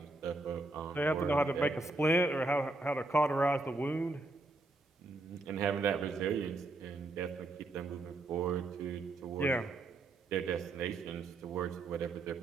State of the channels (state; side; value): quieter; left; 3.0 dB